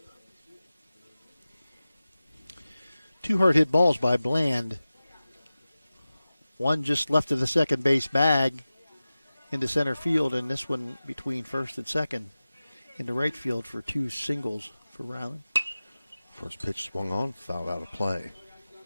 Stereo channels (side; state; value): both; inverted; correlation -0.96